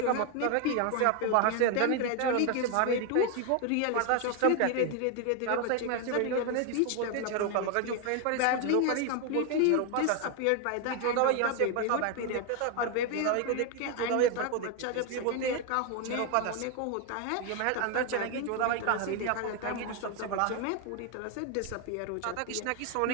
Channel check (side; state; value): both; different; correlation 0.01